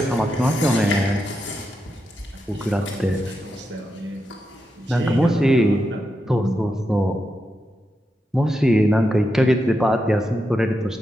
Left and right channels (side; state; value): both; normal; correlation 0.86